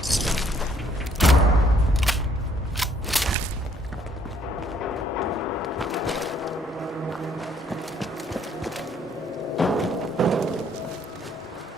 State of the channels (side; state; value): both; normal; correlation 0.65